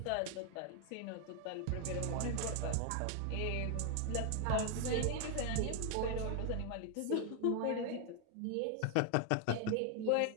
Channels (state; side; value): different; both; correlation 0.00